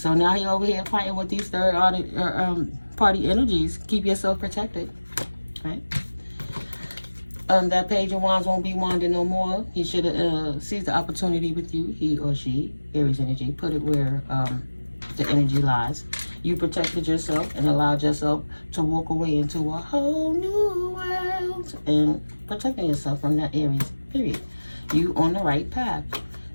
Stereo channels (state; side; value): inverted; both; correlation -1.00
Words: now you're over here fighting with these third party energies. Keep yourself protected, right? That page of wands won't be wanding no more. He should have seized the opportunity with you, he or she, Aries energy. Put it where the energy lies. You protected yourself and allowed yourself to walk away into a whole new world and protecting yourself from that Aries, period. You on the right path.